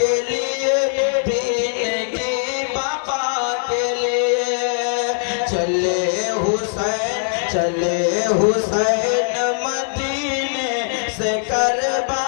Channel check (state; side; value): silent; right; digital silence